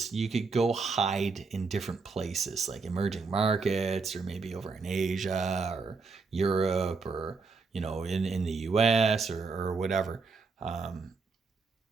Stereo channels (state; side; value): quieter; left; 4.5 dB